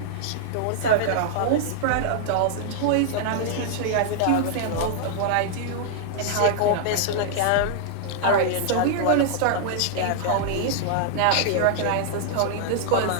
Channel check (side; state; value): both; different; correlation -0.01